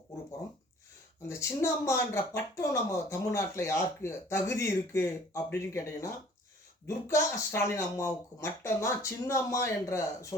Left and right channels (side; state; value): both; normal; correlation 0.52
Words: கூற போகிறோம். அந்த சின்னம்மான்ற பட்டம் நம்ம தமிழ்நாட்டில் யாருக்கு தகுதி இருக்குது அப்படின்னு கேட்டிங்கன்னா, துர்கா ஸ்டாலின் அம்மாவுக்கு மட்டும்தான் சின்னம்மா என்ற